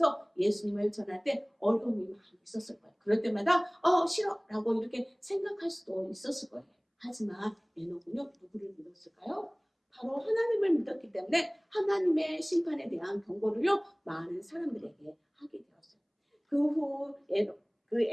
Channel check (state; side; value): identical; both; correlation 1.00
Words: 예수님을 전할 때 어려움이 많이 있었을 거예요. 그럴 때마다, 싫어. 라고 이렇게 생각할 수도 있었을 거예요. 하지만 에녹은요, 누구를 믿었을까요? 바로 하나님을 믿었기 때문에 하나님의 심판에 대한 경고를요, 많은 사람들에게 하게 되었어요. 그 후